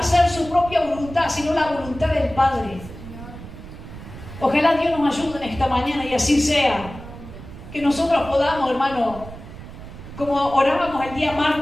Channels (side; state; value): right; noise; rumble, 14 dB below the sound